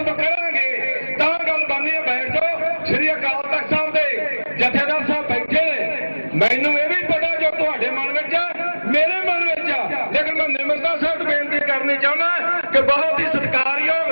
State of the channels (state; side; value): inverted; both; correlation -1.00